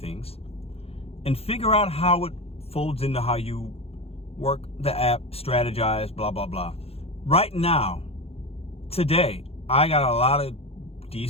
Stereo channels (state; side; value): late; right; 0.29 ms